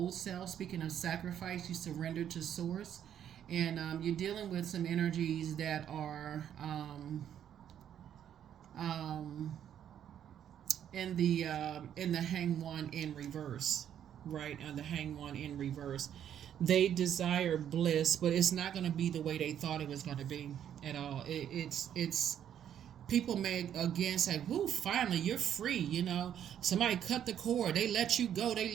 self. Speaking of sacrifice, you surrender to source, and you're dealing with some energies that are in the Hanged One in reverse, right? And the Hanged One in reverse, they desire bliss, but it's not going to be the way they thought it was going to be at all. It's people may again say, "Woo, finally you're free." You know, somebody cut the cord, they let you go, they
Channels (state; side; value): quieter; left; 9.8 dB